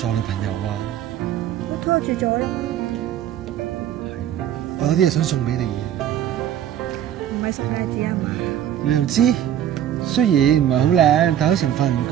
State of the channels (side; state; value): left; quieter; 10.7 dB